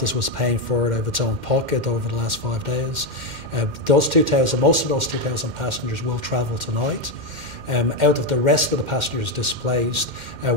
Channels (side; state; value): left; late; 2.1 ms